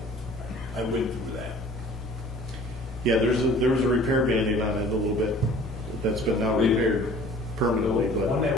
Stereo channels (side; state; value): both; normal; correlation 0.49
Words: I went through that. Yeah, there was a repair Band-Aid on it a little bit, that's been now repaired permanently, The one but.